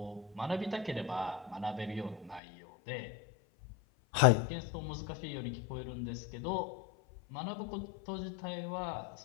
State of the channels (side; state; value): right; drops out; at 2.4 s